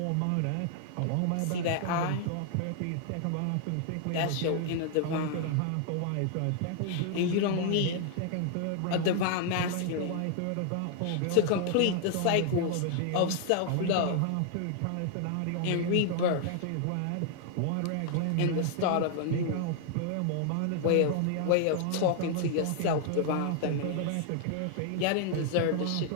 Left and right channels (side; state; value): both; different; correlation 0.00